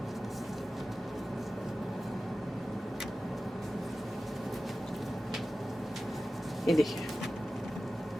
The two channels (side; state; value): both; normal; correlation 0.95